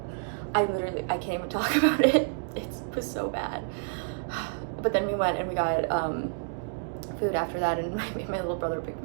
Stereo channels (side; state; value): left; silent; digital silence